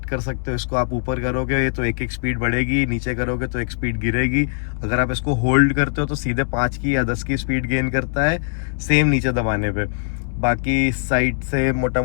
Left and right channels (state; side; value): silent; right; digital silence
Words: कर सकते हो. इसको आप ऊपर करोगे तो एक स्पीड बढ़ेगी, नीचे करोगे तो एक स्पीड गिरेगी. अगर आप इसको होल्ड करते हो तो सीधे 5 की या 10 की स्पीड गेन करता है, सेम नीचे दबाने पे. बाकी इस साइड से मोटा